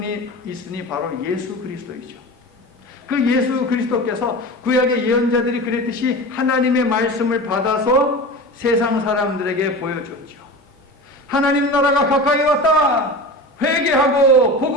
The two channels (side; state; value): both; normal; correlation 0.31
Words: 있으니 바로 예수 그리스도이죠. 그 예수 그리스도께서 구약의 예언자들이 그랬듯이 하나님의 말씀을 받아서 세상 사람들에게 보여줬죠. 하나님 나라가 가까이 왔다. 회개하고